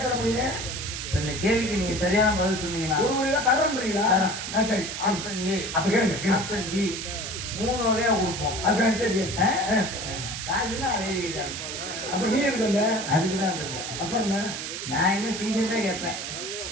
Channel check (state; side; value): noise; right; hiss, 6 dB below the sound